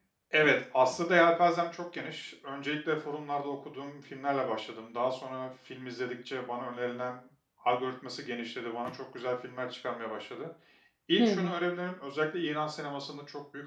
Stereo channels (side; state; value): both; identical; correlation 1.00